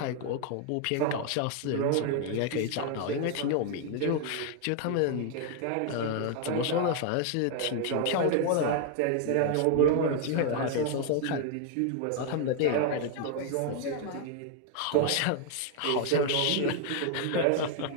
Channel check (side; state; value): both; different; correlation 0.00